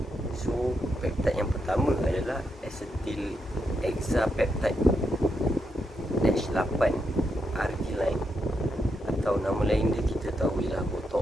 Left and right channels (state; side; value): normal; both; correlation 0.82